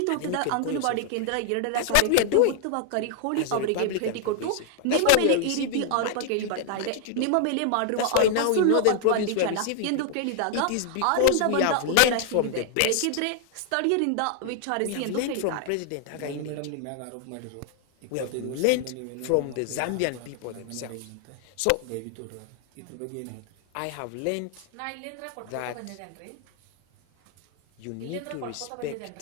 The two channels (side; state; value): both; different; correlation 0.00